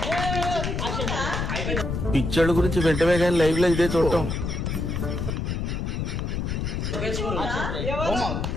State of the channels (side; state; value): left; noise; rumble, 2 dB below the sound